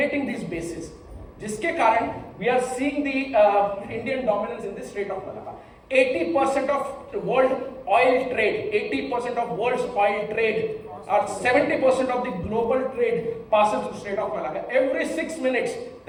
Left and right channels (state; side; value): identical; both; correlation 1.00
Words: these bases. जिसके कारण we are seeing the Indian dominance in the Strait of Malacca. 80% of world oil trade, 80% of world's oil trade, or 70% of the global trade passes through Strait of Malacca. Every 6 minutes,